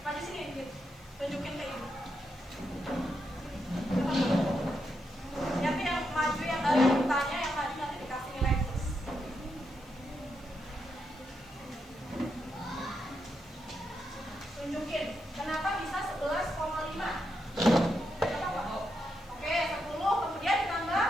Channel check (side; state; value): left; noise; hiss, 27 dB below the sound